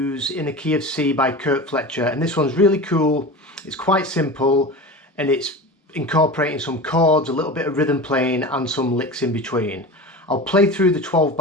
in the key of C by Kirk Fletcher, and this one's really cool. It's quite simple and it's incorporating some chords, a little bit of rhythm playing and some licks in between. I'll play through the 12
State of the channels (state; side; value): normal; both; correlation 0.31